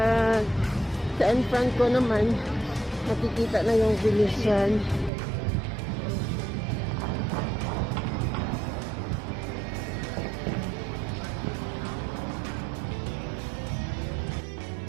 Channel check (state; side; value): drops out; left; at 5.1 s